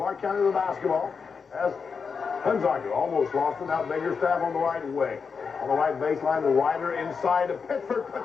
County with the basketball. As Hunziker almost lost it. Now Biggerstaff on the right wing. On the right baseline, the Ryder inside of Pittsburgh.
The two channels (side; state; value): right; quieter; 5.6 dB